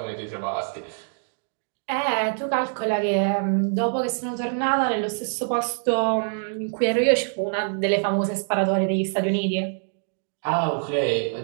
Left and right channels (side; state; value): left; silent; digital silence